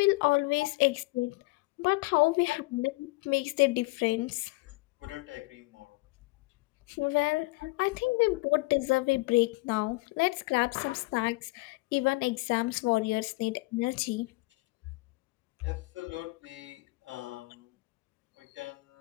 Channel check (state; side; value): quieter; right; 23.6 dB